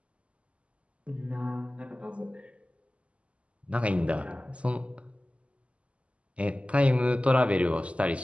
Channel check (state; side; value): late; left; 0.060 ms